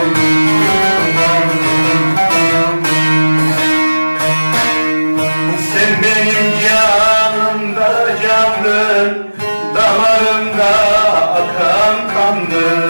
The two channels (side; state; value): both; inverted; correlation -1.00